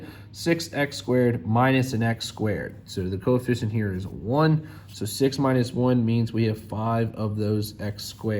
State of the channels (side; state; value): both; identical; correlation 1.00